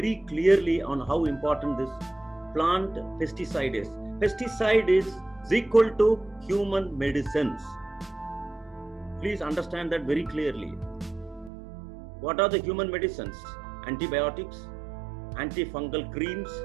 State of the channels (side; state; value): left; drops out; at 11.5 s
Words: clearly on how important this plant pesticide is. Pesticide is equal to human medicines. Please understand that very clearly. What are the human medicines? Antibiotics, antifungal creams,